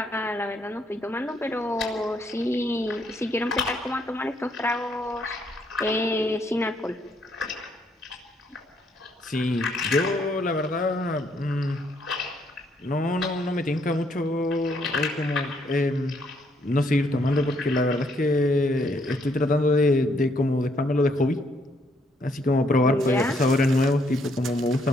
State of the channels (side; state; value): both; normal; correlation 0.71